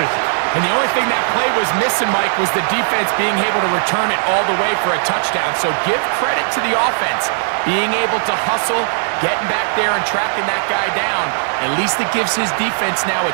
And the only thing that play was missing, Mike, was the defense being able to return it all the way for a touchdown. So give credit to the offense, being able to hustle, getting back there and tracking that guy down. At least it gives his defense now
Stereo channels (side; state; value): left; silent; digital silence